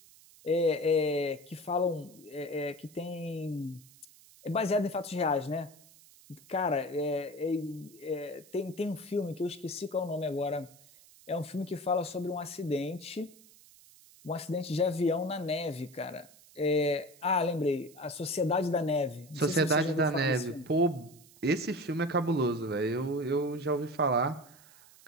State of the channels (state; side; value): noise; right; hiss, 24 dB below the sound